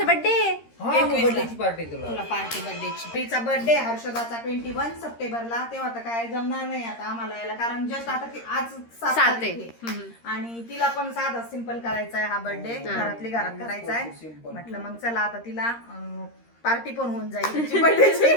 बर्थडे तुला पार्टी बर्थडेची. तिचा बर्थडे हर्षदाचा 21 सप्टेंबरला. तेव्हा तर काय जमणार नाही आता आम्हाला यायला कारण जस्ट आता आज 7 तारीख आहे. आणि तिला पण साधा सिंपल करायचा आहे हा बर्थडे. घरातली घरात करायचा आहे. म्हटलं मग चला आता तिला पार्टी पण होऊन जाईल तिची बर्थडेची.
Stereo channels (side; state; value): right; late; 13 ms